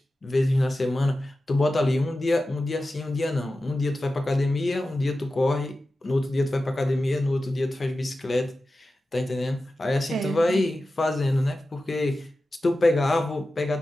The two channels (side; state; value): both; normal; correlation 0.93